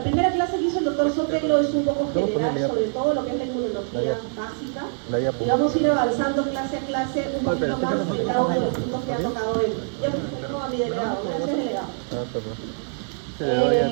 clase que hizo el doctor Sotelo es un poco general sobre todo lo que es la inmunología básica. Y vamos a ir avanzando clase a clase un poquito más en cada uno de los puntos que ha tocado él. Ya presento a mi delegado. Gracias, delegado.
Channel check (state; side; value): silent; left; digital silence